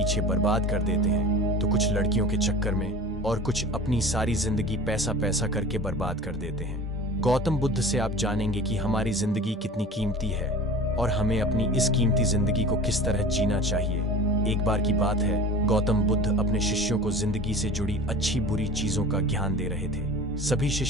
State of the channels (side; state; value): both; normal; correlation 0.38